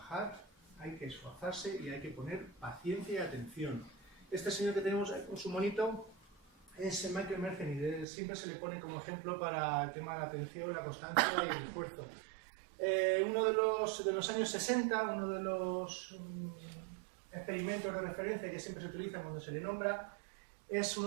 hay que esforzarse y hay que poner paciencia y atención. Este señor que tenemos ahí con su monito es Michael Mercenary. Siempre se le pone como ejemplo para el tema de la atención, la constancia y el esfuerzo. Uno de los años 60, uno de los experimentos de referencia que siempre se utilizan cuando se le nombra, es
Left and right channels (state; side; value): drops out; left; at 8.1 s